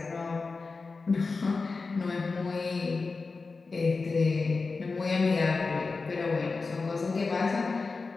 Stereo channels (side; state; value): right; quieter; 4.2 dB